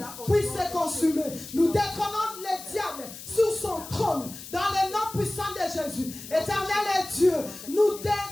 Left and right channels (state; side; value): noise; left; hiss, 13 dB below the sound